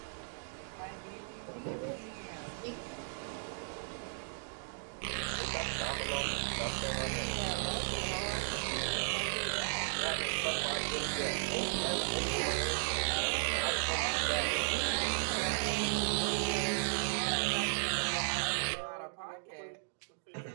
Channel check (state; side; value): silent; left; digital silence